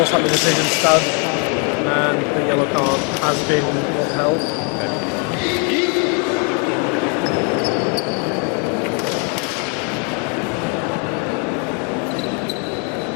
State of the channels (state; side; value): quieter; right; 37.6 dB